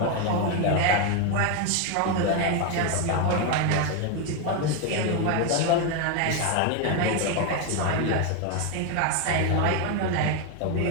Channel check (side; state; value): both; different; correlation 0.01